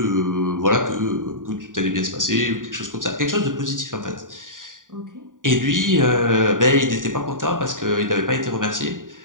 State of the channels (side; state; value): left; late; 0.89 ms